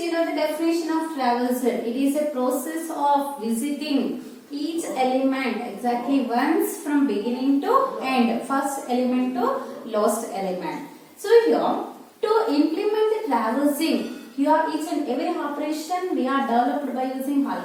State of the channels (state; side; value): identical; both; correlation 1.00